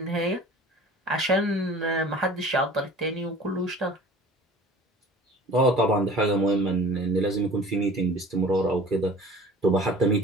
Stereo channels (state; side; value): normal; both; correlation 0.44